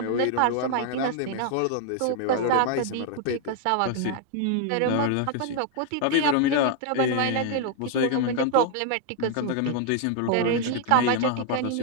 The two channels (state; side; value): different; both; correlation 0.00